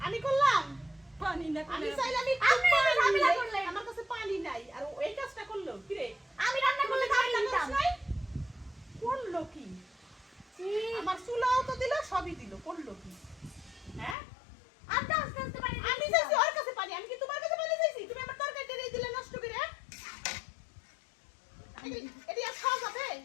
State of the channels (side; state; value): right; drops out; at 14.2 s